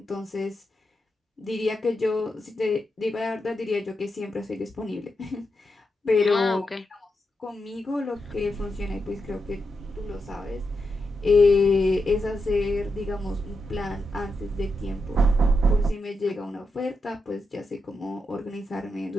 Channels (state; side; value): normal; both; correlation 0.86